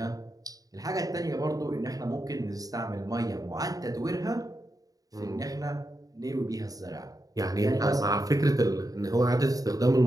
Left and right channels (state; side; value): late; left; 0.18 ms